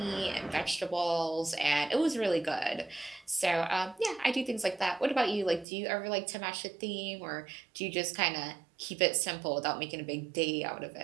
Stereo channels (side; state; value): left; drops out; at 5.7 s